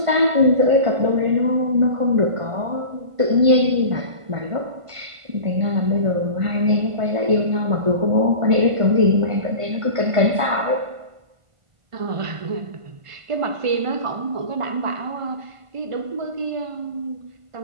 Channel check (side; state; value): left; late; 1.5 ms